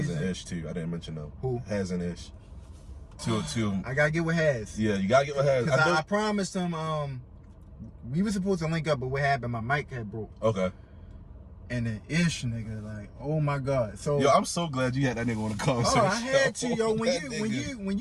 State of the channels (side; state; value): both; identical; correlation 1.00